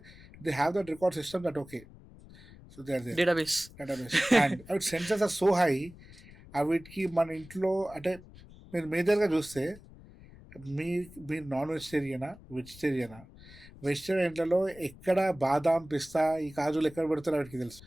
they have that record system that okay. So they are their database. And అవి sensors are so high. వీటికి మన ఇంట్లో అంటే మీరు మేజర్గా చూస్తే మీరు నాన్ వెజిటేరియనా, వెజిటేరియనా? వెజిటేరియన్లలో ఎక్కడ బాదాం, పిస్తా, ఈ కాజులు ఎక్కడ పెడతారో వాటికి తెలుసు.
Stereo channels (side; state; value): left; noise; rumble, 20 dB below the sound